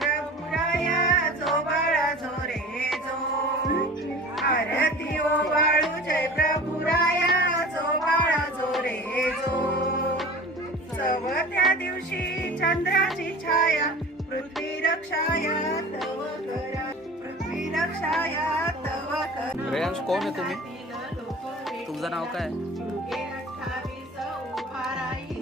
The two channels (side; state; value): both; normal; correlation 0.39